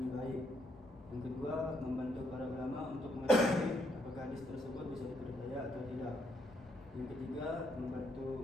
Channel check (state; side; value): normal; both; correlation 0.74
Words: baik. Yang kedua, membantu para ulama untuk mengetahui apakah hadis tersebut bisa dipercaya atau tidak. Yang ketiga,